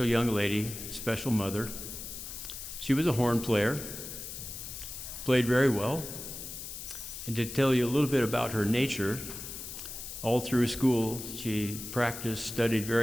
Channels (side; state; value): left; noise; hiss, 9 dB below the sound